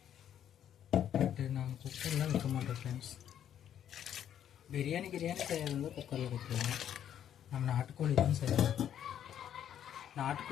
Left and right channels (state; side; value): quieter; right; 10.0 dB